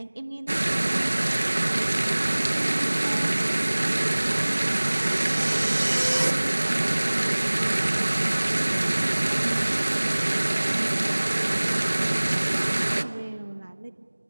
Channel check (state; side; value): inverted; both; correlation -1.00